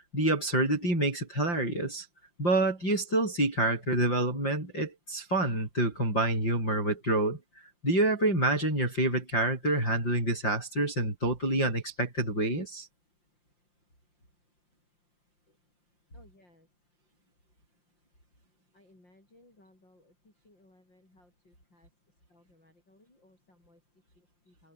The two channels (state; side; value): late; right; 5.7 ms